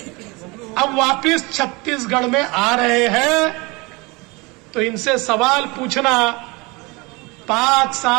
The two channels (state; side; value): quieter; left; 25.6 dB